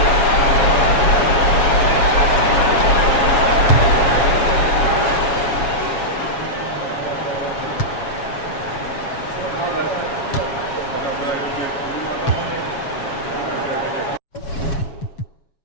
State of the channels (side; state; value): right; late; 7.3 ms